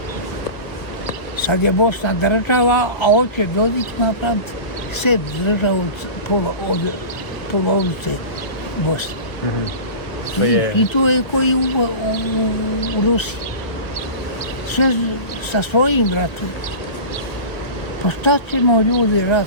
Sad je Bosna država, a hoće Dodik napraviti sebi državu od polovice Bosne. I to je koji u Rusiji. Sve sa svojim bratom. Pa šta ćemo ljudi rat?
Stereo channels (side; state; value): right; late; 1.6 ms